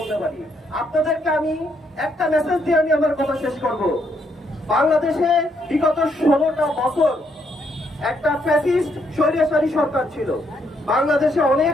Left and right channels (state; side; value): normal; both; correlation 0.74